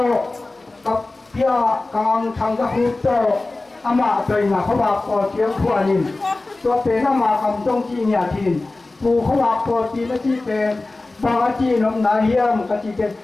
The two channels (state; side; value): quieter; right; 3.2 dB